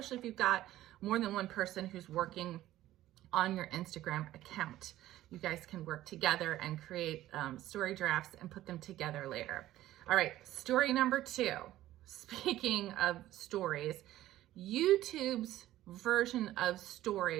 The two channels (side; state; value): left; quieter; 14.5 dB